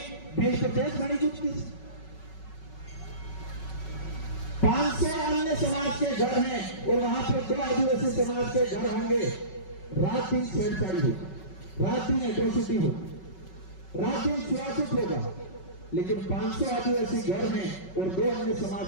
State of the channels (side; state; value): right; late; 5.3 ms